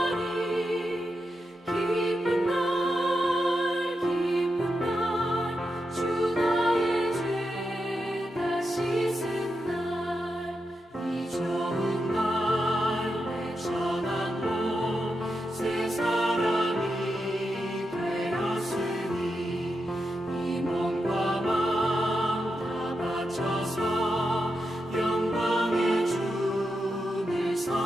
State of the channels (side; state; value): both; normal; correlation 0.87